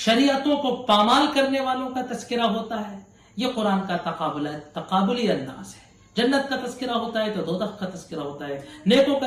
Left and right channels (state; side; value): identical; both; correlation 1.00